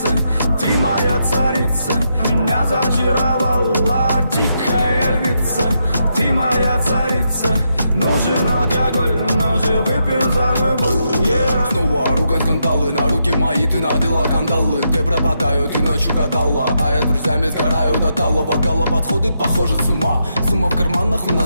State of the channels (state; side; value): inverted; both; correlation -0.81